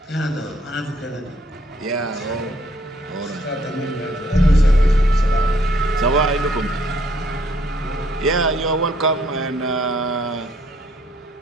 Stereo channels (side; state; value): both; normal; correlation 0.66